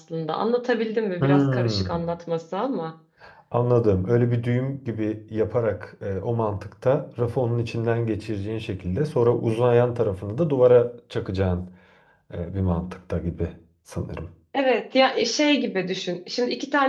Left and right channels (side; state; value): both; identical; correlation 1.00